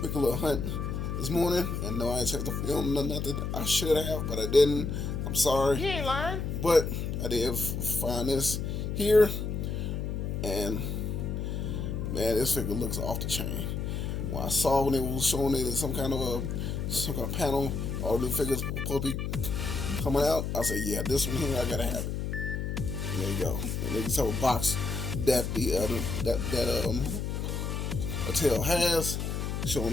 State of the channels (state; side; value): noise; left; hum, 2 dB below the sound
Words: little hunt this morning, and no, I ain't checked the film or nothing. I should have, but I didn't. I'm sorry. You ain't lying. But I did find this here, and man, this figure looks off the chain. When I saw when they was showing it in some kind of panel, all the new figures supposed to be coming out, I said, yeah, this one here, I gotta have it. And there you go. And then you saw a box that the Mattel has,